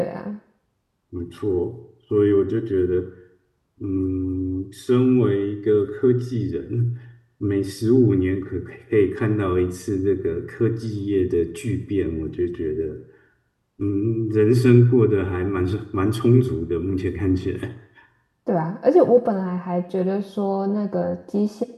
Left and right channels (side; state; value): both; identical; correlation 1.00